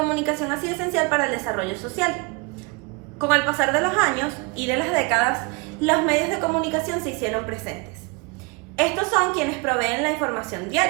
ha sido esencial para el desarrollo social. Con el pasar de los años y de las décadas, los medios de comunicación se hicieron presentes. Estos son quienes proveen la información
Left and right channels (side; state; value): left; quieter; 28.4 dB